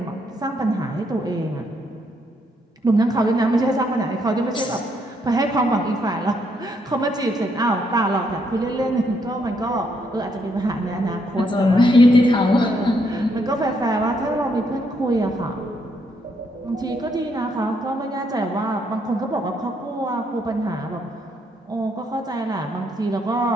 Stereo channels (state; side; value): normal; both; correlation 0.74